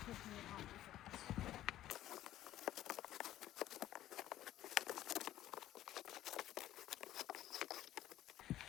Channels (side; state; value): right; quieter; 13.5 dB